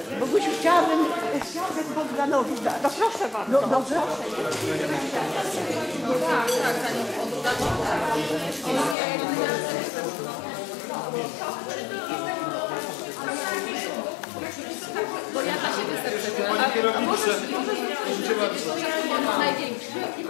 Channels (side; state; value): right; drops out; at 9.0 s